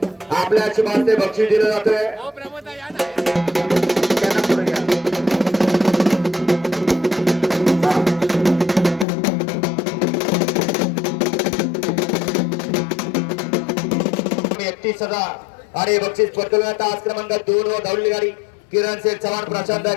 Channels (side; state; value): right; drops out; at 9.1 s